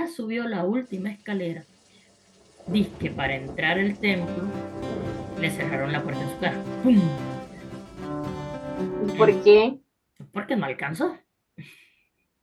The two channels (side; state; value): both; identical; correlation 1.00